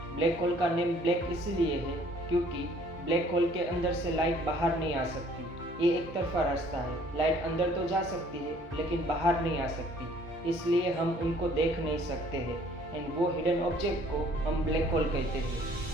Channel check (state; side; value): normal; both; correlation 0.58